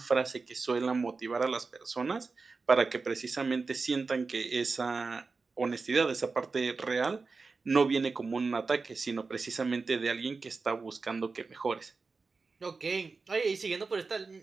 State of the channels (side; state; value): left; quieter; 4.3 dB